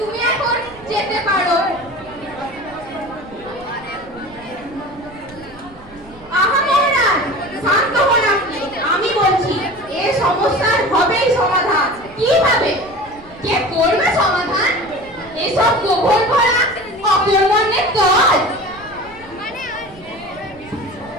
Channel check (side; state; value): right; noise; rumble, 23 dB below the sound